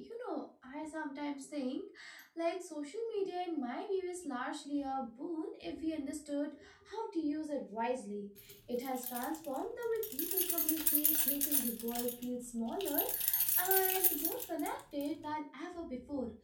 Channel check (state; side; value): identical; both; correlation 1.00